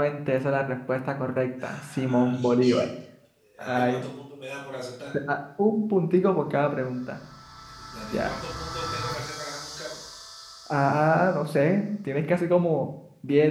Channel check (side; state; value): both; identical; correlation 1.00